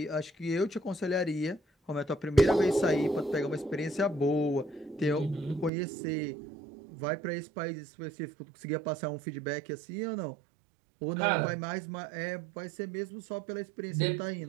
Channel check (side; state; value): left; drops out; at 5.7 s